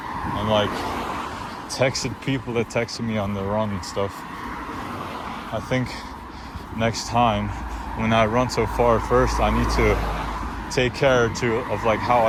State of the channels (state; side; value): identical; both; correlation 1.00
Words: and like texted people that texted me on the run and stuff. I think next time when I run so far, first I need to take care of like how